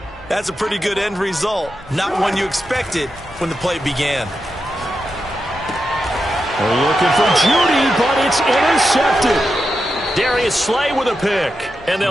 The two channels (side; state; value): both; normal; correlation 0.88